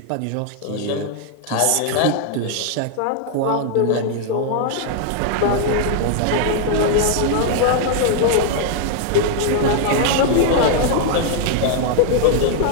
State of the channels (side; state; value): both; different; correlation 0.00